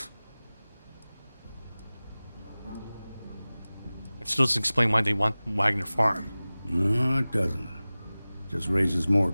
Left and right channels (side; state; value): both; inverted; correlation -0.98